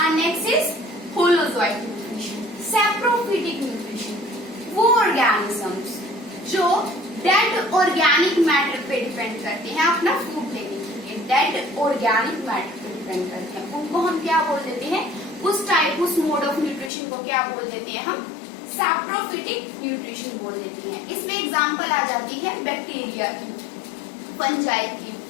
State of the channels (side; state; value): right; drops out; at 16.9 s